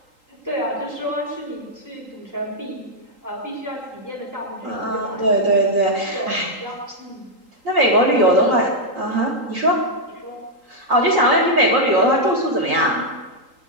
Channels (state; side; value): late; left; 3.8 ms